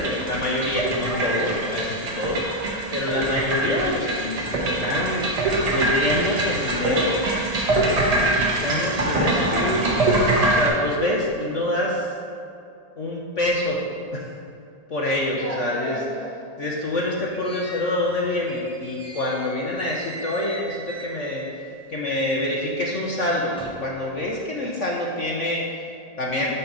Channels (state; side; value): late; right; 1.8 ms